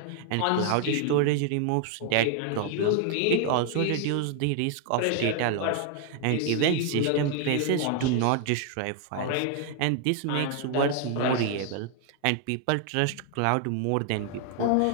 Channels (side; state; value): both; different; correlation 0.00